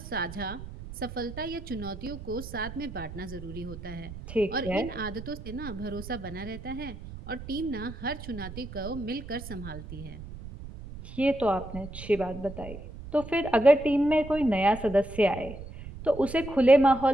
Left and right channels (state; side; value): noise; right; rumble, 12 dB below the sound